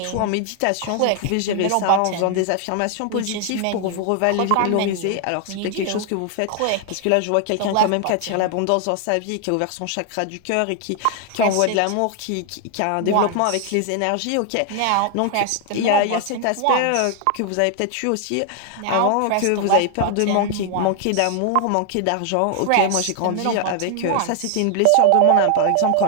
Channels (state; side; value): different; both; correlation 0.00